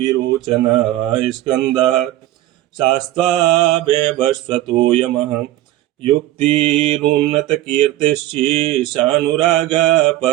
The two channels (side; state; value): left; quieter; 15.2 dB